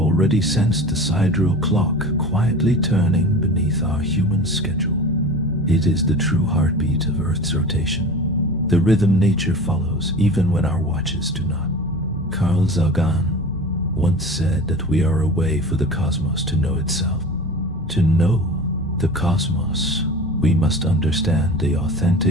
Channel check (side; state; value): both; normal; correlation 0.36